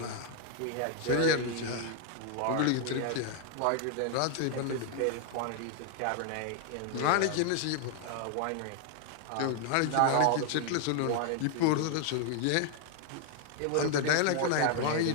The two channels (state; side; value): different; both; correlation 0.00